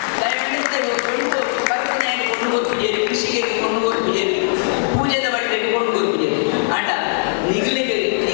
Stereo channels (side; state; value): right; silent; digital silence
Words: ಕೃಷಿಗೆ ಕೊಂಡು ಹೋಗ್ಬಿಜೇರಿ ಪೂಜೆದ ಬಟ್ಟೆಗೆ ಕೊಂಡು ಹೋಗ್ಬಿಜೇರಿ ಅಂಡ